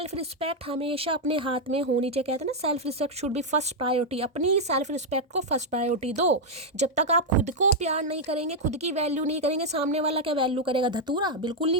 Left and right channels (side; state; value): both; normal; correlation -0.02